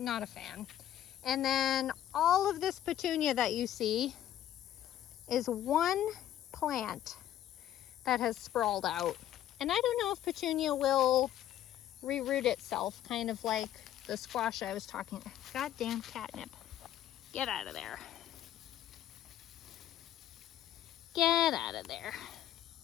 a fan. And then all of this petunia that you see is one plant that has sprawled out. And I don't know if petunia will reroot itself, kind of like the squash I was talking about. Goddamn catnip. Get out of there. Get out of there.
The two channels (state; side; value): quieter; right; 11.9 dB